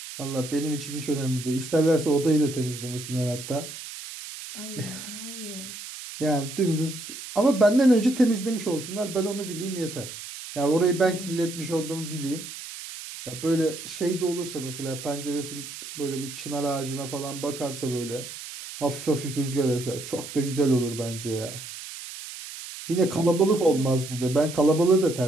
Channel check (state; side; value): noise; right; hiss, 11 dB below the sound